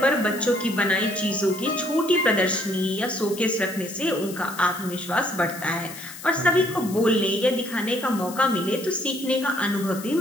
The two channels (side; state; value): left; noise; hiss, 14 dB below the sound